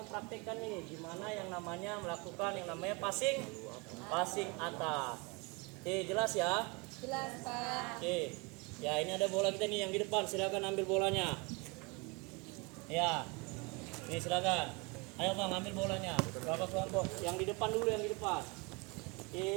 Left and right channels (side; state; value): left; quieter; 28.9 dB